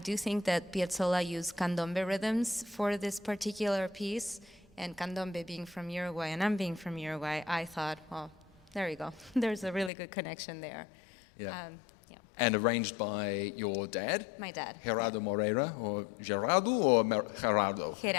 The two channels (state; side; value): drops out; right; at 9.9 s